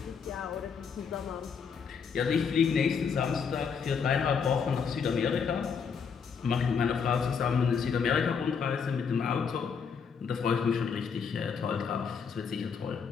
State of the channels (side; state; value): right; quieter; 6.2 dB